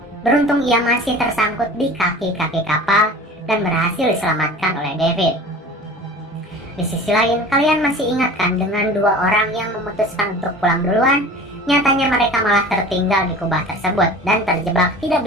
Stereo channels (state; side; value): normal; both; correlation 0.40